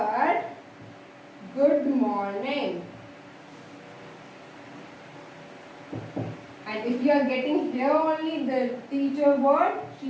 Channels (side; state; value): both; identical; correlation 1.00